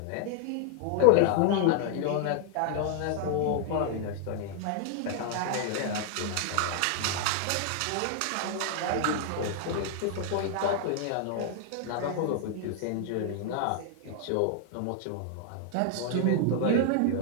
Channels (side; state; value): both; different; correlation 0.00